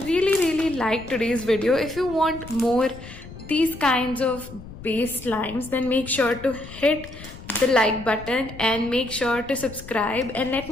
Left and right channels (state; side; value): noise; left; rumble, 15 dB below the sound